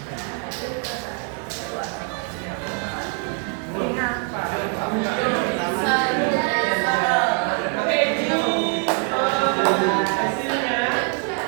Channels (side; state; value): left; quieter; 39.6 dB